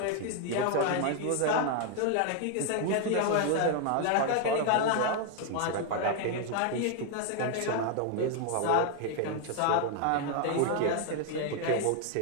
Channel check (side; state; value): both; different; correlation 0.00